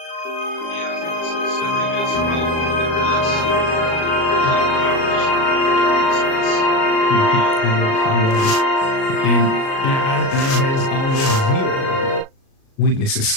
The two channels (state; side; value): late; right; 37 ms